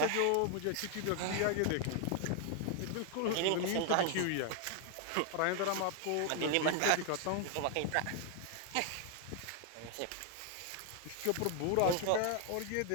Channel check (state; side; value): different; both; correlation 0.00